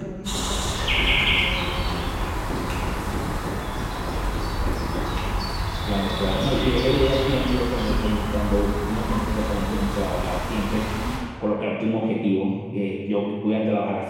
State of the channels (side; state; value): both; identical; correlation 1.00